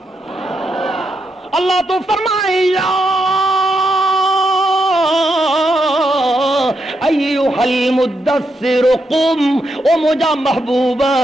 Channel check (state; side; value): normal; both; correlation 0.82